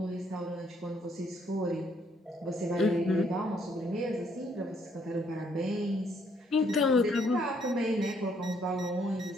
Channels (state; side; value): normal; both; correlation 0.69